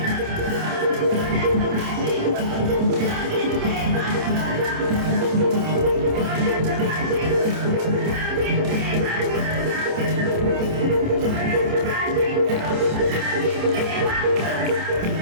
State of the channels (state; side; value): late; left; 27 ms